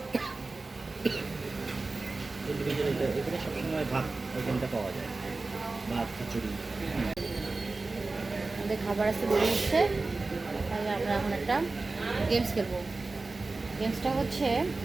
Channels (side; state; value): left; quieter; 3.5 dB